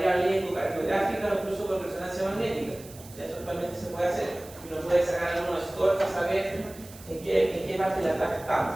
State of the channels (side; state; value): right; noise; hiss, 19 dB below the sound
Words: ecocardiográfica o incluso con resonancia magnética. Eso es actualmente se puede hacer. Y uno puede sacar algunos scores para saber en qué parte de la tabla